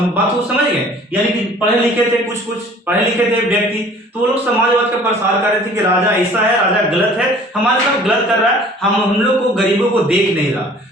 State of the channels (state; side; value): normal; both; correlation 0.50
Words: को समझ गए? यानी कि पढ़े लिखे थे, कुछ पढ़े लिखे थे व्यक्ति, तो वो लोग समाजवाद का प्रसार कर रहे थे कि राजा ऐसा है, राजा गलत है, हमारे साथ गलत कर रहा है, हम लोग को गरीबों को देख नहीं रहा।